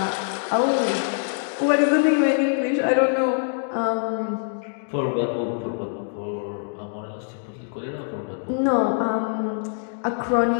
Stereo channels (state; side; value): silent; right; digital silence